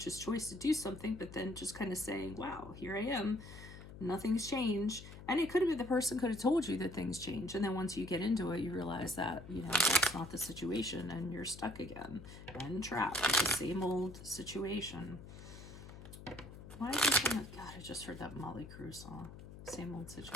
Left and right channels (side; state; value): left; noise; hum, 14 dB below the sound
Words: choice to do something, but then just kind of saying, wow, here I am. Nothing's changed. And it could have been the person could have told you that things change. And then once you get into it, you realize that, that's not the situation and you're stuck again and trapped with the same old situation. Why is this in God, I just heard that Molly Crue song. Same old